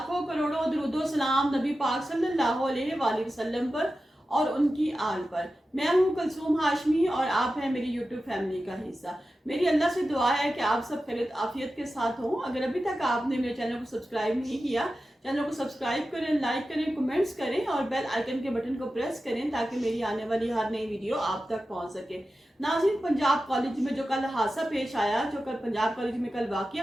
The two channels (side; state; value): both; normal; correlation 0.93